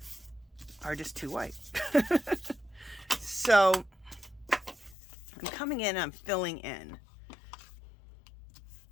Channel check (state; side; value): drops out; right; at 5.0 s